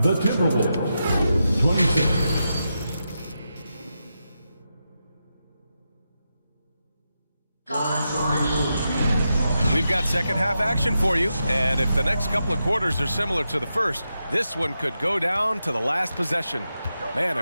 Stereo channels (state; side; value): inverted; both; correlation -0.87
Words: the Timberwolves 26. We've got second half action for you, and if the next couple of quarters are similar to the first, this one could go down to the last possession. Man,